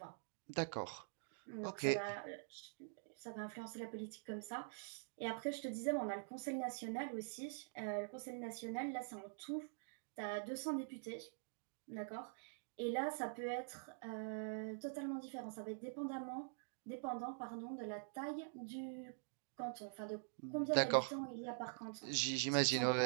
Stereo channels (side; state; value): left; silent; digital silence